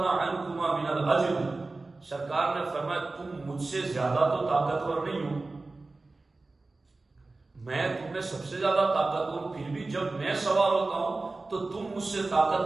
عنكما من الاجر، سرکار نے فرمایا تم مجھ سے زیادہ تو طاقتور نہیں ہو، میں تم میں سب سے زیادہ طاقتور ہوں، پھر بھی جب میں سوار ہوتا ہوں تو تم مجھ سے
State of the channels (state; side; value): quieter; left; 3.4 dB